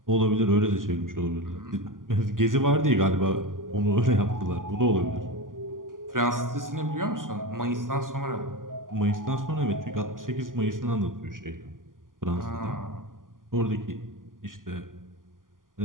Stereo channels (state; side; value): late; left; 0.90 ms